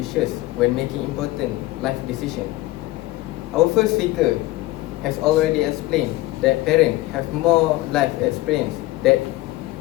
when making important life decisions. Our first speaker has already explained that parents have more life experience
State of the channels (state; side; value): quieter; right; 18.4 dB